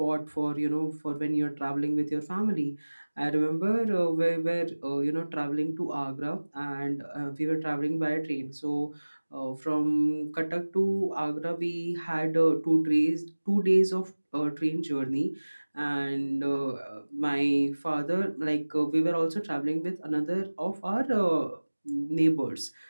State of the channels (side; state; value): both; inverted; correlation -1.00